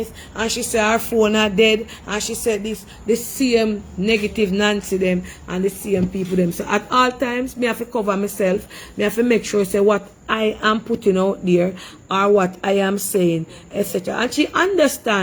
and she say her phone are dead, and she said this, the same negative Nancy them and the same people them. So at all times, me have to cover myself, me have to make sure say what I am putting out there or what I am saying, etc. And she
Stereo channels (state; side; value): identical; both; correlation 1.00